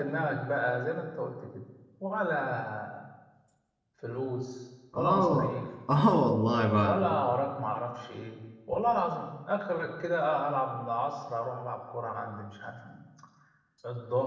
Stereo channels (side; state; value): both; identical; correlation 1.00